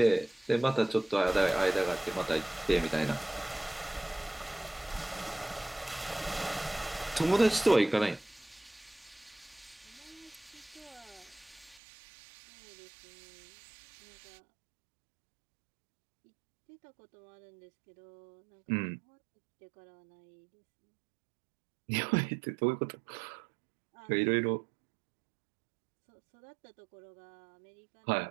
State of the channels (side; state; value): left; drops out; at 11.8 s